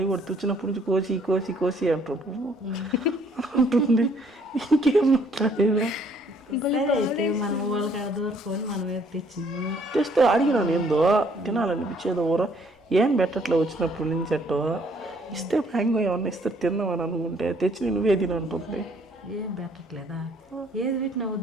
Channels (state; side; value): normal; both; correlation 0.64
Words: కూడా తెచ్చినప్పటి నుంచి కోసి అంటుంది. ఇంకేం మాట్లాడేదా? సరే అయితే మనం వాళ్ళకి దూరుకొని మనం ఏదో తెచ్చినాము. తెస్తే అడిగినాను ఏందో తినాలనిపించేదో ఊర ఏం పెట్టట్లే వచ్చినప్పటి నుంచి అట్టో. ఇస్తే మ్యాంగో ఏమన్నా ఇస్తే తిన్నామని అనుకుంటే తెచ్చి నువ్వే తినంటుంది. ఏం పెట్టట్లేదా? ఏది పెట్టినా